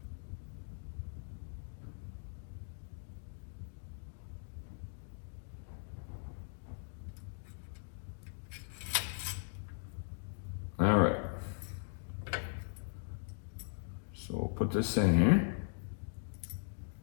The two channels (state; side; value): silent; right; digital silence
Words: All right. So we'll put this in here.